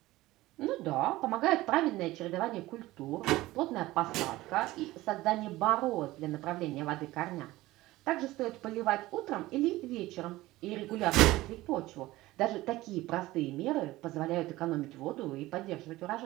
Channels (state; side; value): quieter; left; 17.8 dB